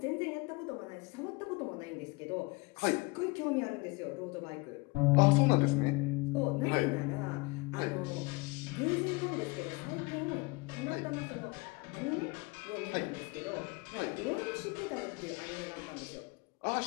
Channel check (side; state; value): right; quieter; 26.6 dB